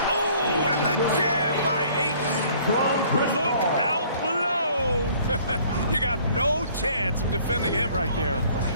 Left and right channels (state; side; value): inverted; both; correlation -0.56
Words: Oh, and the jam by Ayton. Look out below. You got no chance of defending him right there.